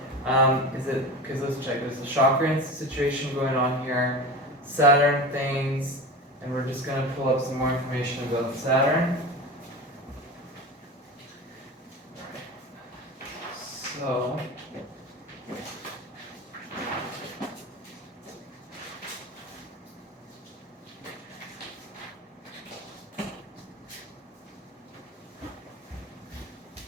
Because let's check, there's a chakra situation going on here, Saturn things, and we're just going to pull up some more information about Saturn. So,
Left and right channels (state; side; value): normal; both; correlation 0.30